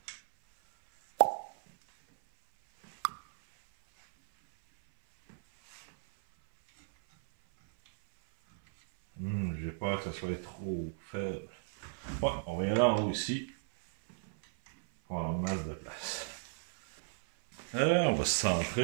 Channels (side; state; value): left; silent; 55 dB below the other